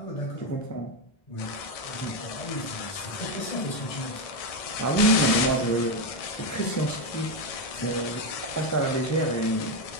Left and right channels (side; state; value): right; late; 1.6 ms